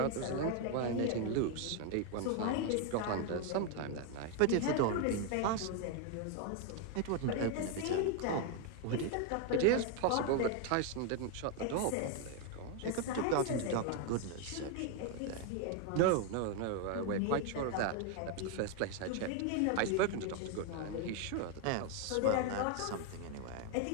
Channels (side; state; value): both; different; correlation 0.01